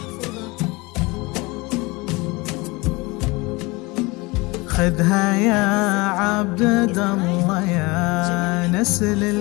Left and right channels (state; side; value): quieter; right; 24.4 dB